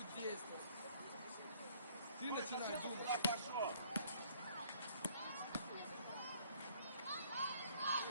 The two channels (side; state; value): both; inverted; correlation -0.60